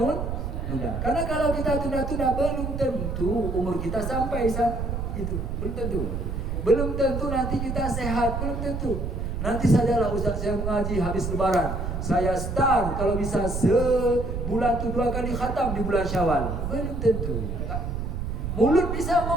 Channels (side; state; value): right; noise; rumble, 3 dB below the sound